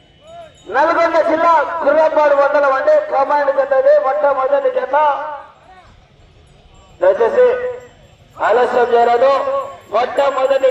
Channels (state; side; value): identical; both; correlation 1.00